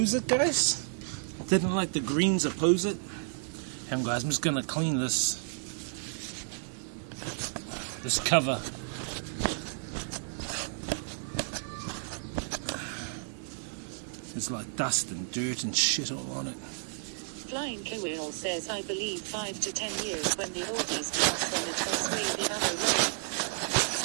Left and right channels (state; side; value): silent; left; 57 dB below the other